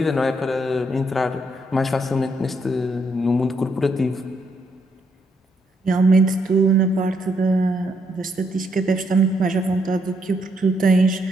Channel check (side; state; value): both; normal; correlation 0.75